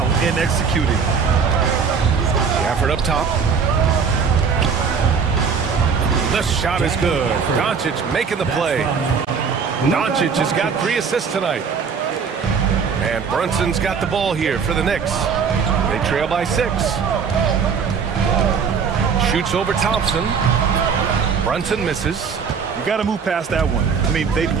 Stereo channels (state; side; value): quieter; left; 6.0 dB